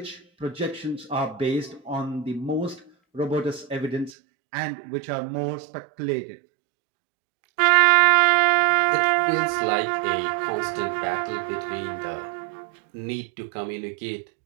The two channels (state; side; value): drops out; left; at 4.1 s